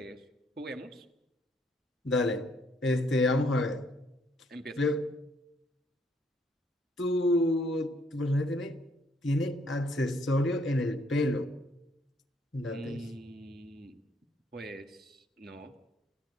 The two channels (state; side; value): normal; both; correlation 0.68